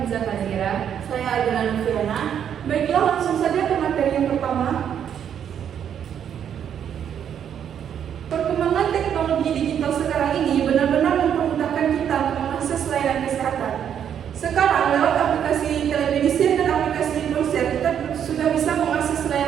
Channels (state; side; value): quieter; left; 8.9 dB